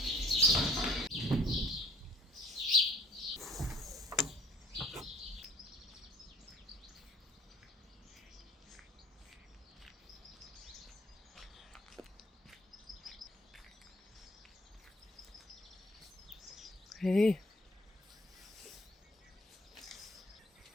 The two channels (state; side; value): normal; both; correlation 0.55